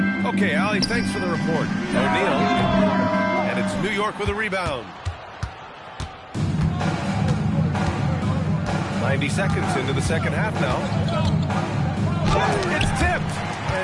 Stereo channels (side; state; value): both; identical; correlation 1.00